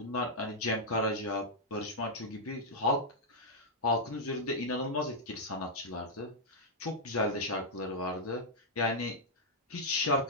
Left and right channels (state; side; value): normal; both; correlation -0.06